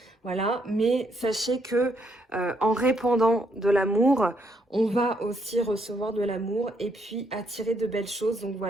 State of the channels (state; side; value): normal; both; correlation 0.74